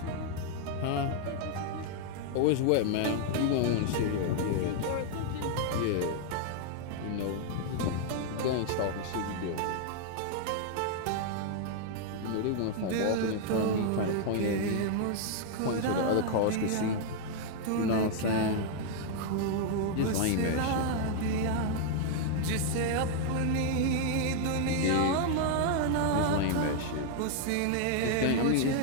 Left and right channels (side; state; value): both; different; correlation 0.00